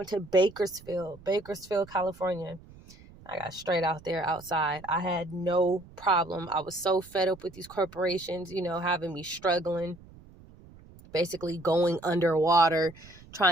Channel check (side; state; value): right; noise; rumble, 22 dB below the sound